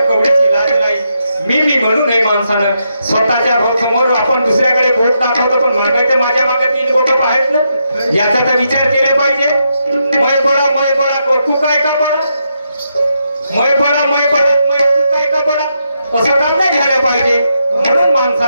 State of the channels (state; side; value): inverted; both; correlation -0.81